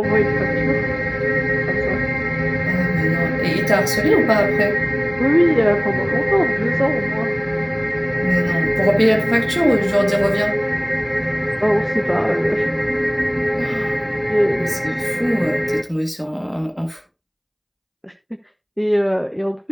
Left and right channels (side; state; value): both; identical; correlation 1.00